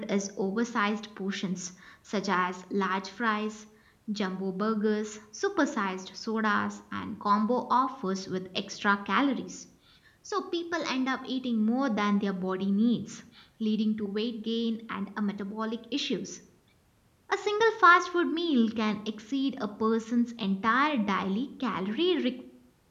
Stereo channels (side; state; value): both; identical; correlation 1.00